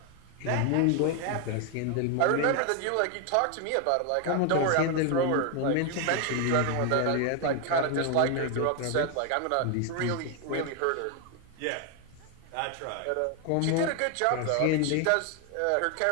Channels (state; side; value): different; both; correlation 0.01